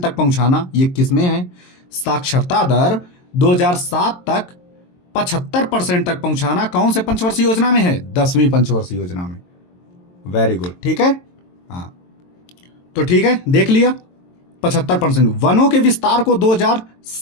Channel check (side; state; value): right; late; 22 ms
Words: तक पहुंचाना, ये किसमें है? साक्षरता दर 2007 तक 75% तक पहुंचाना कौन से पंचवर्षीय योजना में है? 10वीं पंचवर्षीय योजना में। वेरी गुड, ठीक है। हाँ, तो ठीक है, देख लिया 75%। वनों के विस्तार को